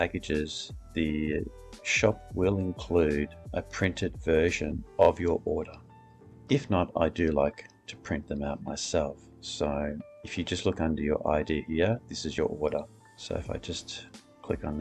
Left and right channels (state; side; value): identical; both; correlation 1.00